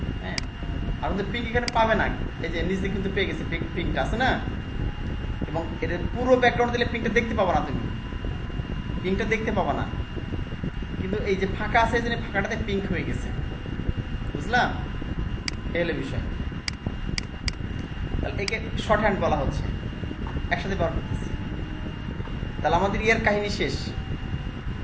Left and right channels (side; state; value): both; identical; correlation 1.00